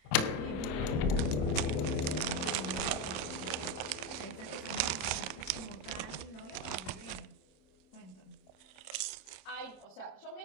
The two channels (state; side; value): late; right; 26 ms